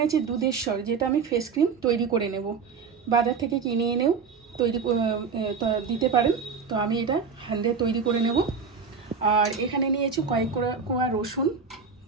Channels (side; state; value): left; quieter; 5.6 dB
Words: আছে দুধের সর, যেটা আমি ফেস ক্রিম তৈরি করে নেব। বাজার থেকে কিনে এনেও তৈরি দিতে পারেন, তো আমি এটা হ্যান্ডে তৈরি করে নেব। আর এখানে নিয়েছি কয়েক কোয়া রসুন,